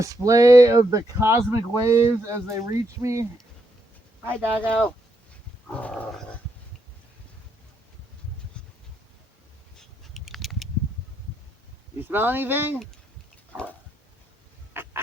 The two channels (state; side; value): normal; both; correlation 0.78